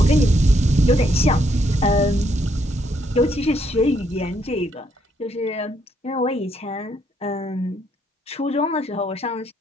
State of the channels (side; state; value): both; normal; correlation 0.73